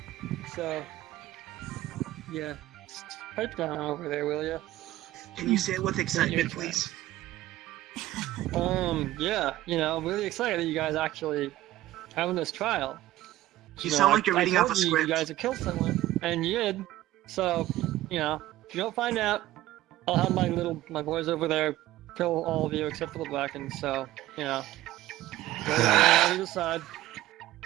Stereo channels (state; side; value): quieter; left; 15.3 dB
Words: So, yeah, just pipe down over there, will ya? Can you say it with excitement, please? Yeah, I'm really excited that you guys actually having this trial. You sound like you're I reading off told a you script. you guys have killed someone, and you did. So, if you don't find out, I'll have my boys over there kill all of you except for the Blackens. So, go on either side.